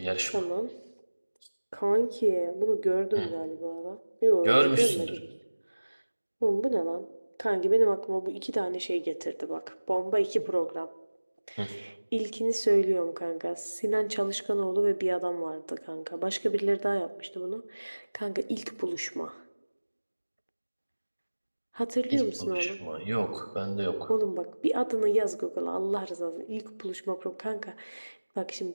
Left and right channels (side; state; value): both; inverted; correlation -1.00